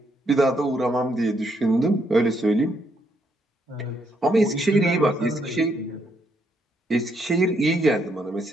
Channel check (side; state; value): both; normal; correlation 0.74